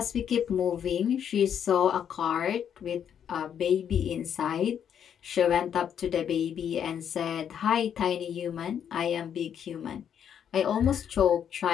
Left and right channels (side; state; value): right; quieter; 8.7 dB